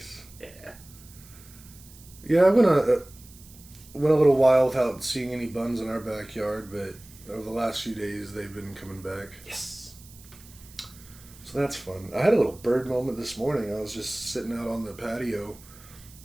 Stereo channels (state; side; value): noise; right; hiss, 22 dB below the sound